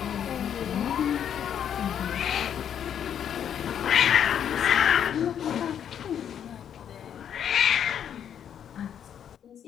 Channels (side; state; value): right; quieter; 9.0 dB